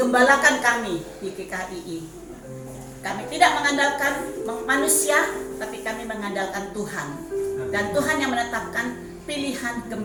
kami di GKI. Kami tidak mengandalkan manusia, tapi kami mengandalkan Tuhan. Dan Tuhan yang menetapkan pilihan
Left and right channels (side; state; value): both; identical; correlation 1.00